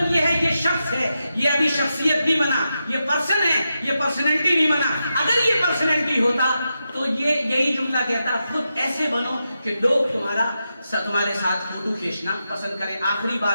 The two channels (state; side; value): inverted; both; correlation -0.88